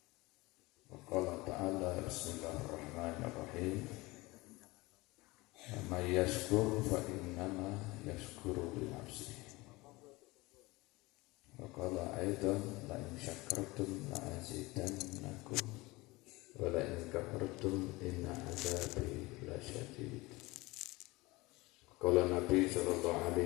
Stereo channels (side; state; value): right; quieter; 22.1 dB